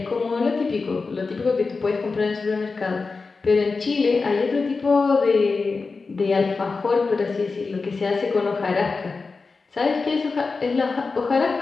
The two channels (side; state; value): right; quieter; 4.3 dB